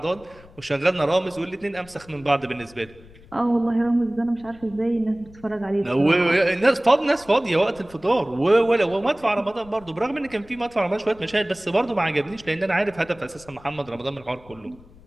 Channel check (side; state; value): left; noise; rumble, 23 dB below the sound